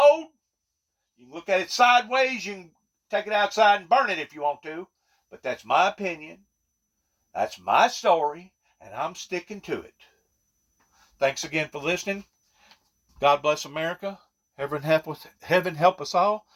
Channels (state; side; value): identical; both; correlation 1.00